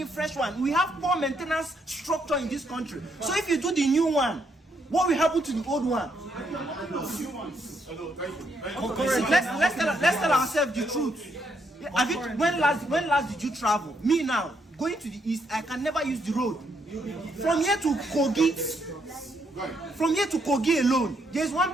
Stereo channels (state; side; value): normal; both; correlation 0.75